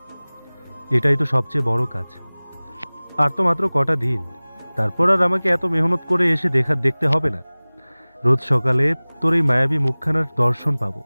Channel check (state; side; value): inverted; both; correlation -1.00